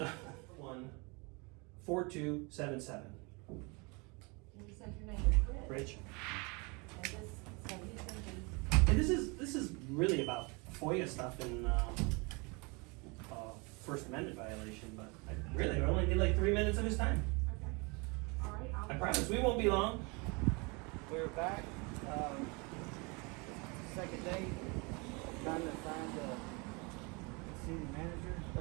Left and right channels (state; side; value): quieter; left; 29.4 dB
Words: 14277. You said your name is Rich. Rich. And this, so he's gonna be, And this is really about FOIA stuff and First Amendment violation, but I only did like 3 minutes of his time. okay. All right, I promise we won't be long. We're back, second day, trying to find the city manager,